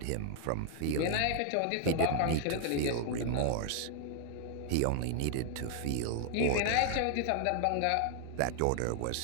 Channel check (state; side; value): different; both; correlation 0.00